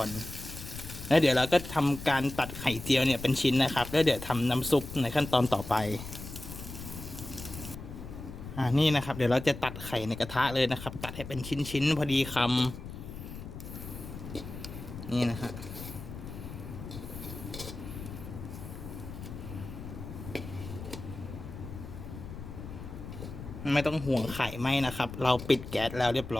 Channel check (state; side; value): noise; left; rumble, 11 dB below the sound